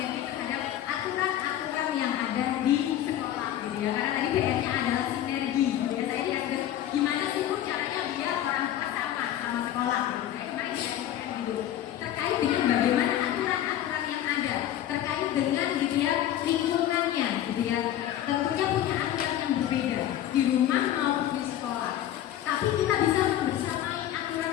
terhadap aturan-aturan yang ada di sekolah, gitu ya. Karena tadi PR-nya adalah sinergi, gitu ya. Saya lihat gimana sih bu caranya biar orang tua sama sekolah, gitu. Saya kemarin diajarkan gitu terkait dengan bagaimana aturan-aturan yang ada terkait dengan, gitu ya, lingkungannya, gitu ya. Tentunya punya aturan yang berbeda di rumah maupun di sekolah. Tapi kita bisa membersamai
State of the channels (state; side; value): quieter; right; 11.8 dB